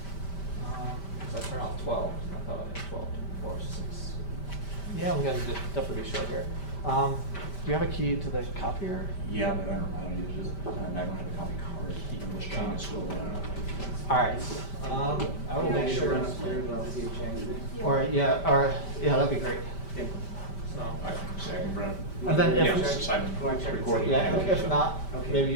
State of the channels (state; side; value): late; right; 5.1 ms